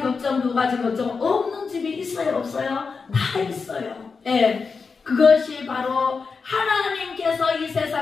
걱정, 두 가지 걱정 없는 집이 있어요, 없어요? 다 있어요. 예. 그것이 바로 하나님께서 이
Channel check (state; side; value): quieter; right; 4.9 dB